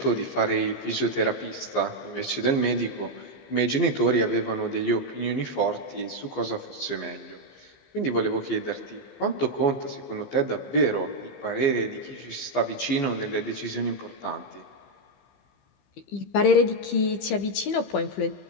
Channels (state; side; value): late; right; 14 ms